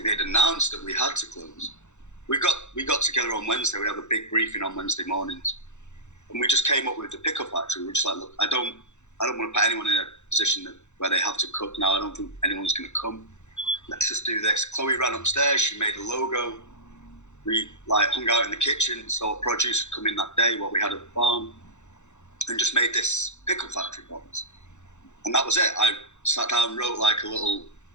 they'd announced that we had to close. We got together on Wednesday. We had a big briefing on Wednesday mornings, and we just came up with the pickle factory. We were just like, look, I don't want to put anyone in a position where they have to cook now. I don't think anyone's going to come. Let's just do this. Chloe ran upstairs. She made a logo. We like hung out in the kitchen, so produce would come in that day, what we had at the farm, and just made this pickle factory box. And that was it. I sat down, wrote like a little,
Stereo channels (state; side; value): late; right; 0.83 ms